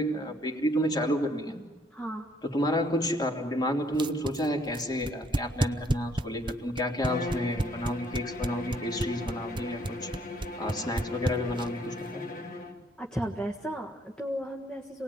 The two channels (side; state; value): both; normal; correlation 0.66